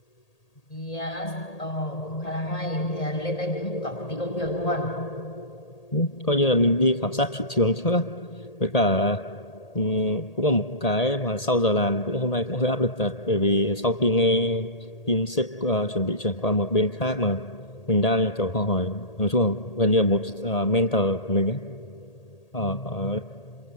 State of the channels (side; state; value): right; late; 1.8 ms